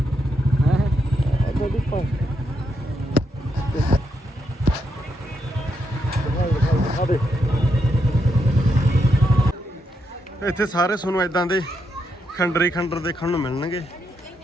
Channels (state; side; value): normal; both; correlation 0.80